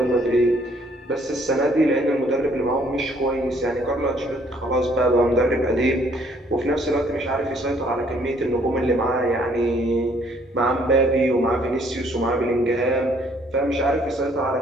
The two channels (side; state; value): both; normal; correlation 0.63